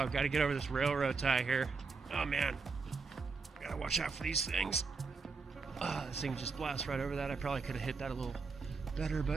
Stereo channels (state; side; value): quieter; left; 4.7 dB